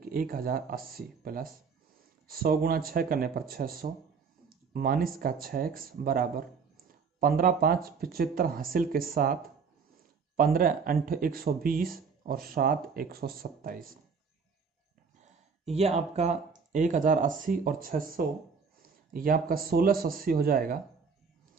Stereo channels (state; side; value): quieter; left; 5.5 dB